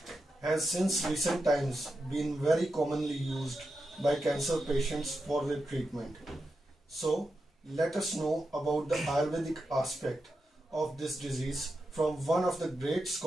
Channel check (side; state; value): both; normal; correlation 0.88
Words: has since recent times been very commonly used by cancer patients for their treatment. So, let us know about the Ayurvedic aspect of this disease from one of the great